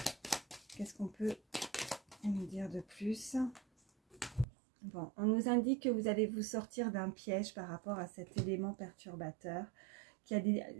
qu'est-ce qu'on peut nous dire de plus? Bon, on nous indique que vous allez vous sortir d'un piège par rapport à cet élément perturbateur.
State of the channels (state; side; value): drops out; left; at 4.5 s